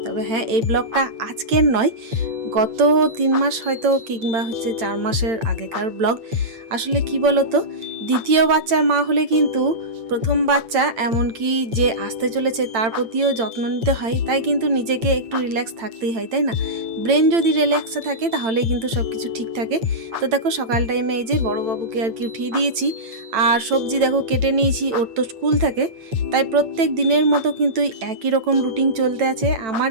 তবে হ্যাঁ, এই ব্লগটা আজকের নয়, গত 3 মাস হয়তো কিংবা 4 মাসের আগেকার ব্লগ। আসলে কি বলতো, দ্বিতীয় বাচ্চার মা হলে কিন্তু প্রথম বাচ্চা এমনকি যে আসতে চলেছে তার প্রতিও যত্ন নিতে হয়, তাই কিন্তু নিজেকে একটু রিল্যাক্স থাকতেই হয়, তাই না? ব্রেন যদি রিল্যাক্সে থাকে তাহলেই কিন্তু সব কিছু ঠিক থাকে। তো দেখো সকাল টাইমে এই যে বড়োবাবুকে আর কি উঠিয়ে দিয়েছি, আর সবজি দেখো কেটে নিয়েছি, ওর তো স্কুল থাকে, তাই প্রত্যেক দিনের মতো কিন্তু একই রকম রুটিন চলতে আছে। আমার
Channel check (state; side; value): late; left; 8.9 ms